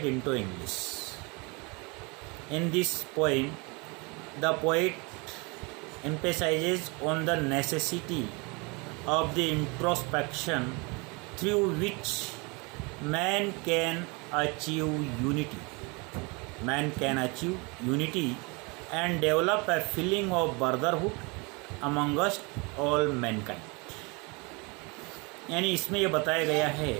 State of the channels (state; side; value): quieter; left; 28.9 dB